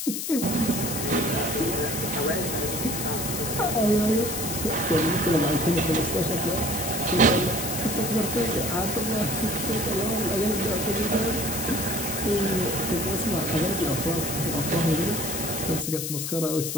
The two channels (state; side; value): noise; left; hiss, 4 dB below the sound